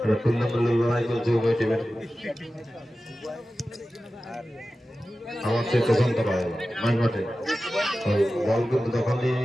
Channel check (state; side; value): normal; both; correlation 0.94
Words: টুর্নামেন্টের লড়াই চলছে উভয় টিমের আমার সে পছন্দ পায় মাঝ মাঠে বল কিন্তু তখন